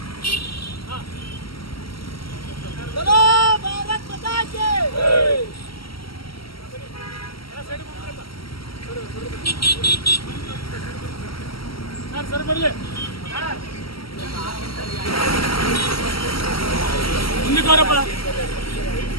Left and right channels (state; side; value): late; right; 0.75 ms